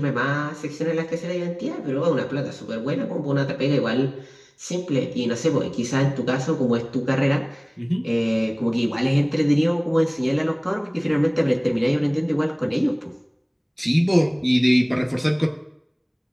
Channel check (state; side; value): identical; both; correlation 1.00